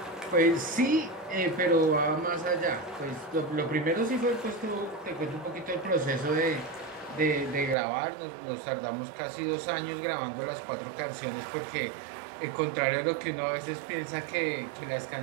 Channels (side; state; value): left; drops out; at 7.8 s